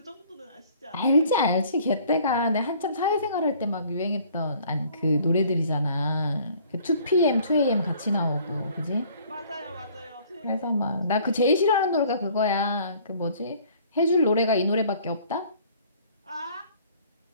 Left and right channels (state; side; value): inverted; both; correlation -0.55